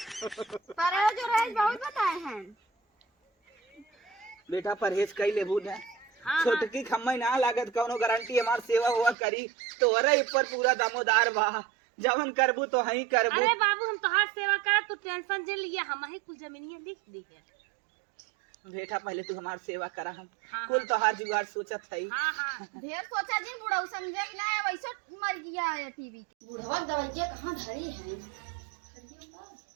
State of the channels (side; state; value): left; drops out; at 9.2 s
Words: परहेज और बहुत बताए हैं बेटा, परहेज कई लेबू ना। हाँ, छोटकी खम्मई ना लागत, कौनो गारंटी हमार सेवा हुआ करी तो ऊपर पूरा दामोदार बा। जवन करबू तो हई करबू। अरे बाबू हम तोहार सेवा कर, तू टेंशन जे लिया, हम ही कुल जमीनिया लिख दी है। बेटा पहले तू हमार सेवा करा, हम हाँ, कुल तोहार जुगाड़ सोचत है। हाँ हाँ ढेर सोचा जी बुढ़ऊ समझे कि ना वैसे मर गया है टीवी के। बुढ़वा दवाइयाँ कहाँ धरी है?